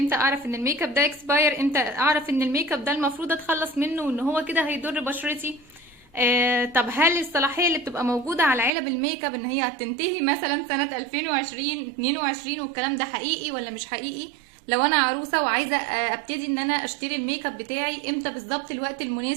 اعرف ان الميك اب ده اكسباير؟ امتى اعرف ان الميك اب ده المفروض اتخلص منه وان هو كده هيضر بشرتي؟ طب هل الصلاحيه اللي بتبقى موجوده على علب الميك اب ان هي هتنتهي مثلا سنه 2020 22 والكلام ده حقيقي ولا مش حقيقي؟ لو انا عروسه وعايزه ابتدي ان انا اشتري الميك اب بتاعي، امتى بالظبط الوقت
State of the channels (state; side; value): drops out; left; at 8.7 s